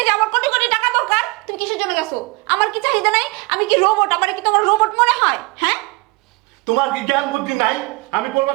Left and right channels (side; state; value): left; quieter; 26.1 dB